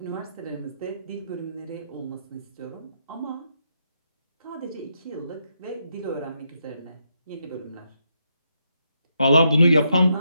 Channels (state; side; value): inverted; both; correlation -0.81